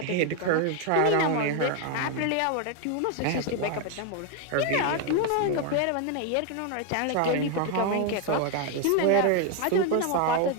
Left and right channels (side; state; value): both; different; correlation 0.01